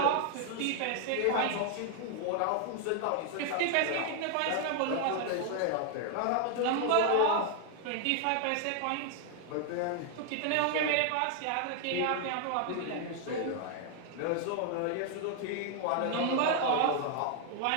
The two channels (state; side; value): different; both; correlation 0.00